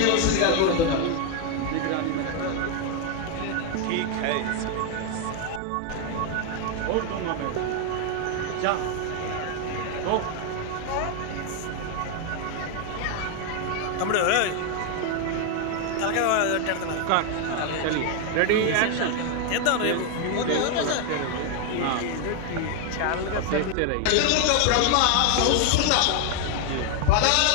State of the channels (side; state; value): both; different; correlation 0.01